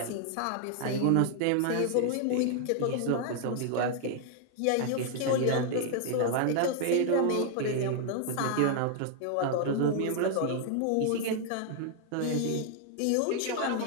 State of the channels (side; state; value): both; different; correlation 0.00